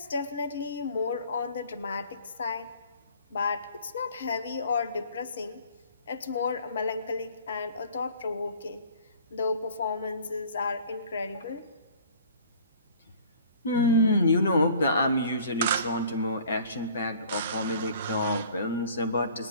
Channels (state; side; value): inverted; both; correlation -0.51